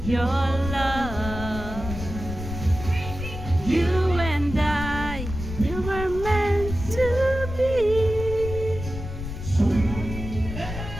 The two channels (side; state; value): left; noise; rumble, 8 dB below the sound